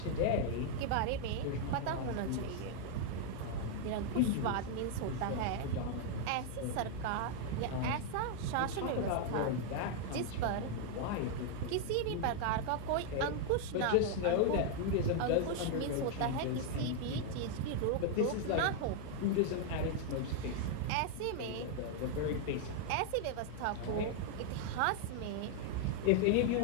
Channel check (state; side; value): different; both; correlation 0.00